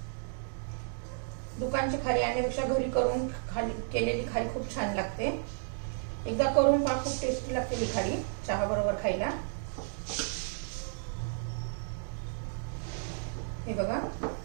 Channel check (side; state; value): left; silent; digital silence